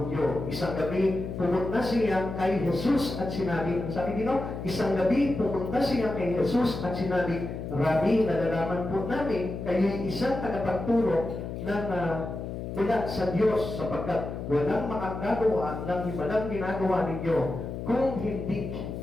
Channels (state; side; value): noise; left; hum, 6 dB below the sound